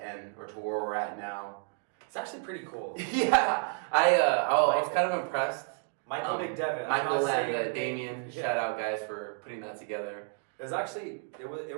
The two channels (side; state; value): left; silent; 57 dB below the other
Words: or to where we're at now. It's actually pretty cool. Yeah, I was kind of impressed. Michael McDevitt. Michael and Damien, shout out guys for putting that together. It was actually, it